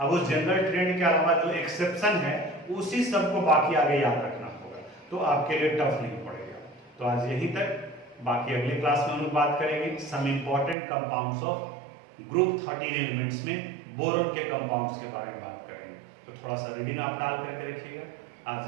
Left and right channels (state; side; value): drops out; left; at 10.8 s